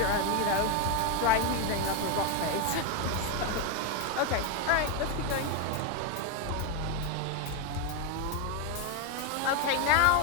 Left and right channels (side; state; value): both; different; correlation 0.02